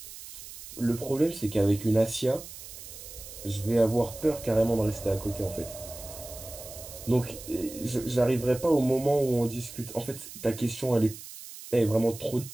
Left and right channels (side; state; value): right; noise; hiss, 14 dB below the sound